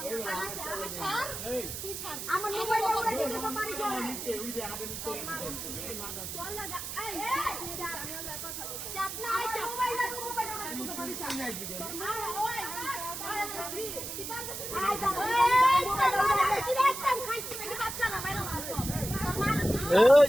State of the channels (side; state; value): right; noise; hiss, 7 dB below the sound